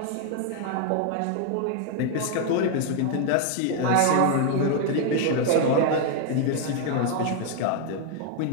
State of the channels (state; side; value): different; both; correlation 0.00